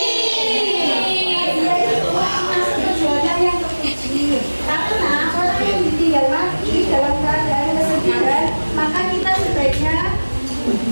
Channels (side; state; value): both; inverted; correlation -1.00